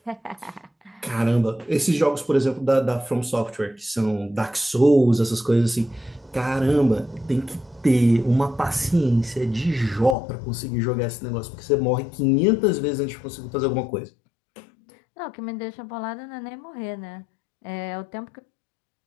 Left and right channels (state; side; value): drops out; right; at 10.2 s